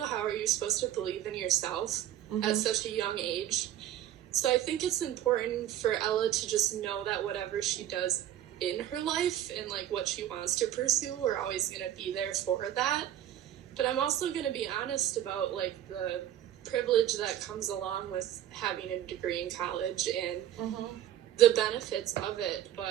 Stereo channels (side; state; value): left; quieter; 11.7 dB